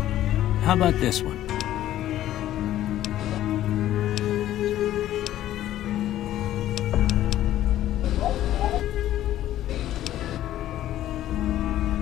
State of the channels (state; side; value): quieter; right; 13.1 dB